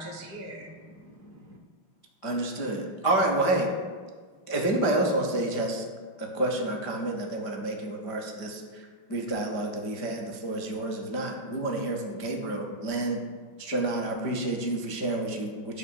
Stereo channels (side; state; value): right; late; 5.1 ms